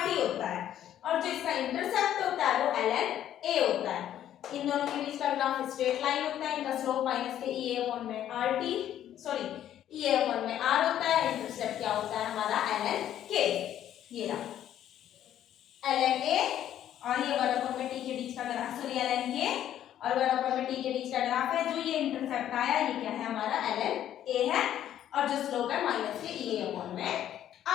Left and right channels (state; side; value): quieter; right; 11.2 dB